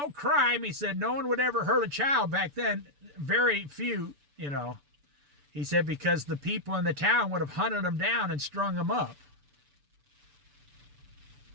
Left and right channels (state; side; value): late; left; 6.9 ms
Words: crime. He said, no one would ever hurt a child back then. Very few, He said, because the people in the town would have hunted them down and strung them up.